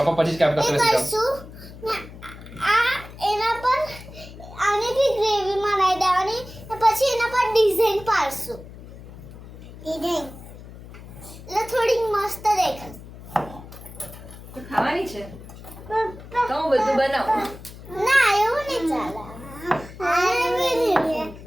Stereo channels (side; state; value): left; noise; hum, 16 dB below the sound